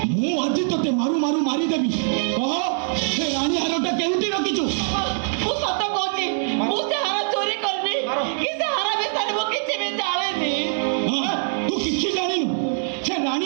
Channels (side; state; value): left; silent; digital silence